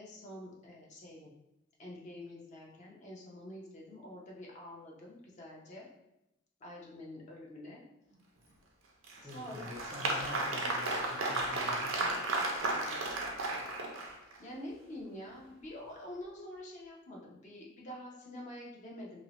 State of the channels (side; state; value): both; normal; correlation 0.03